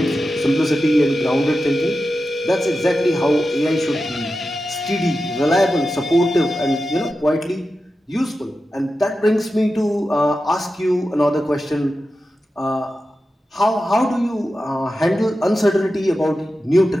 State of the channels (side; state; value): both; normal; correlation 0.92